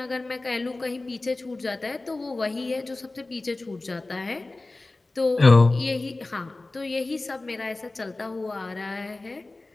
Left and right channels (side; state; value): right; quieter; 3.1 dB